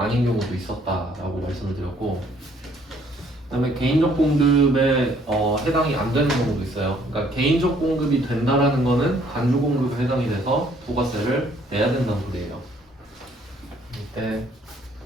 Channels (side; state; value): both; normal; correlation 0.63